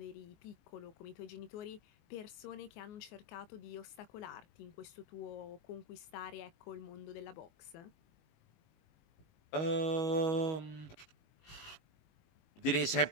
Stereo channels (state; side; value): late; right; 19 ms